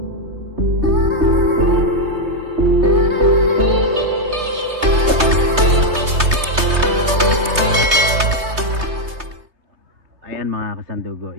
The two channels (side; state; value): left; late; 3.3 ms